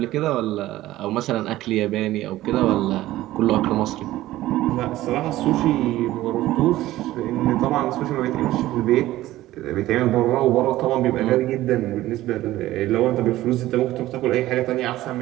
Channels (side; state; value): left; quieter; 15.7 dB